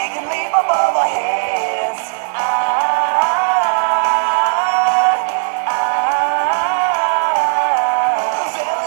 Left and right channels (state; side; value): silent; left; digital silence